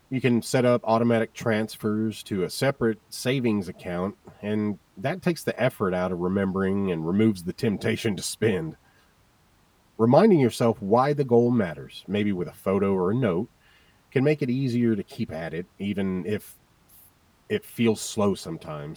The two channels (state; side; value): identical; both; correlation 1.00